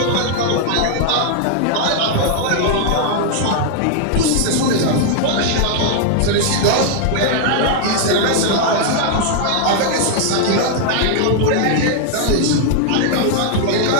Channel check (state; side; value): different; both; correlation 0.00